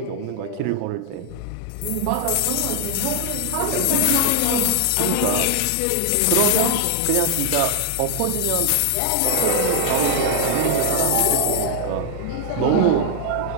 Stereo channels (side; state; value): both; different; correlation 0.00